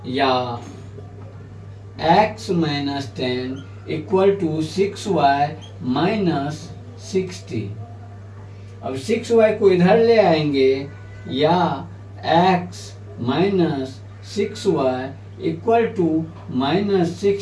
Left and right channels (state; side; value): identical; both; correlation 1.00